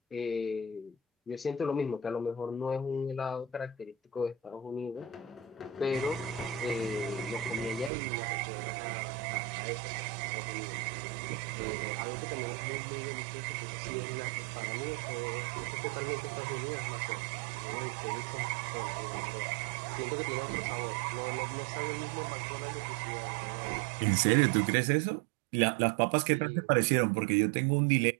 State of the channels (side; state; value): left; drops out; at 7.9 s